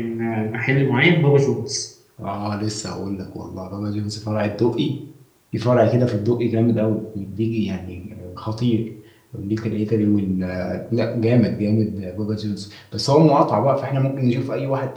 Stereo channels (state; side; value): identical; both; correlation 1.00